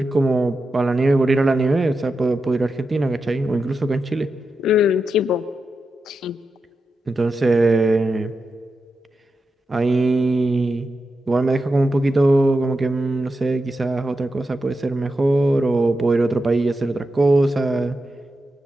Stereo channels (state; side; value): normal; both; correlation 0.89